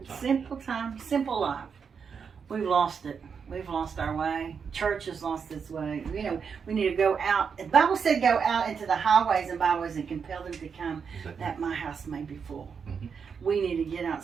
a time. simple time, simple life. We've lost it. We've lost our way. Church has lost its way. We need to go out. The Bible said go out into the highways and byways and compel them to come, Exactly. that my house may be full. Mhm. We need to get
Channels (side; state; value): left; quieter; 6.3 dB